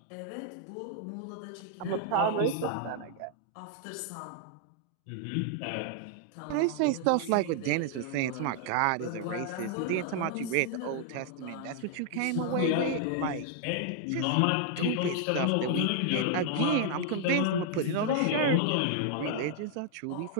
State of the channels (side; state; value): both; different; correlation 0.00